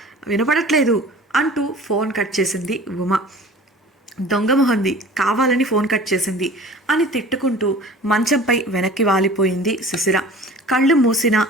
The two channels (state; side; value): normal; both; correlation 0.43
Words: వినపడట్లేదు అంటూ ఫోన్ కట్ చేసింది ఉమ. దొంగమొహంది, కావాలని ఫోన్ కట్ చేసింది అని తిట్టుకుంటూ మంచంపై వెనక్కి వాలిపోయింది శిశిర. కళ్ళు మూసినా